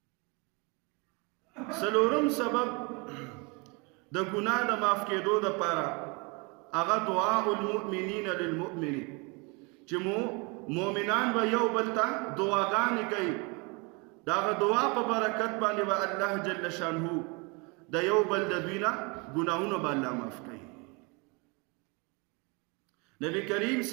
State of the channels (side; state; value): left; quieter; 29.9 dB